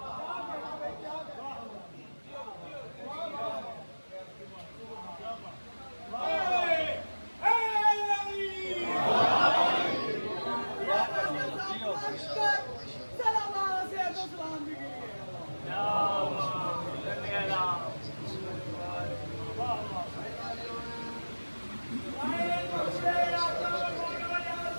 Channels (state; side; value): inverted; both; correlation -1.00